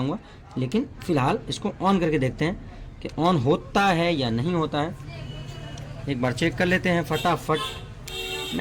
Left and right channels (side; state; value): both; identical; correlation 1.00